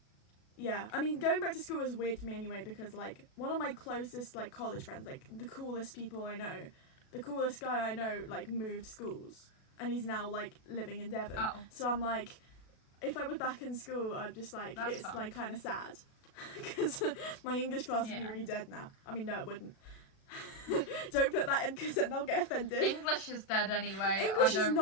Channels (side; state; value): right; late; 37 ms